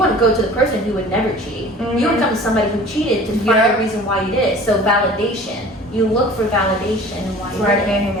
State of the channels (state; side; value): normal; both; correlation 0.45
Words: to go to the person who would never cheat. You would come to somebody who cheated to find a reason why you did it. So validation. You look for validation and why you did it. I can't hang